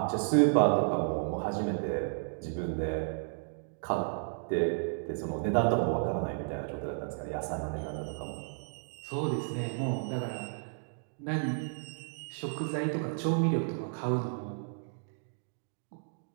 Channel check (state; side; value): silent; left; digital silence